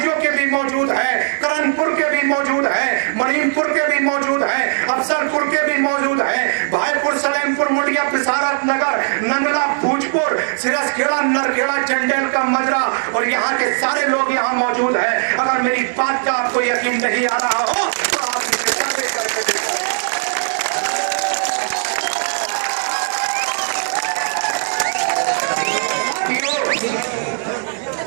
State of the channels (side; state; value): left; silent; digital silence